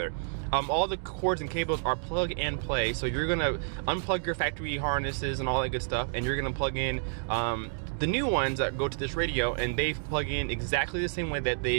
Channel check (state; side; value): silent; left; digital silence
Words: All the cords and cables are plug and play. So you're gonna unplug your factory harnesses and all that good stuff, and you're gonna plug in the new ones that go to this radio, and they plug in exactly the same way that